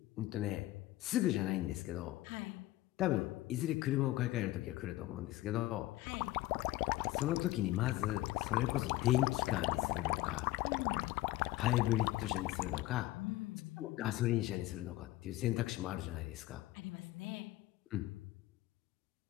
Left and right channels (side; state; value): right; quieter; 16.9 dB